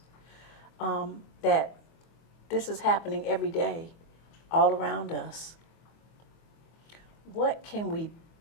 that this is happening every day all around us. What can we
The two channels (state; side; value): late; right; 24 ms